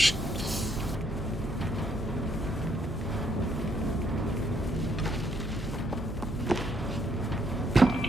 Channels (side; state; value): both; normal; correlation 0.71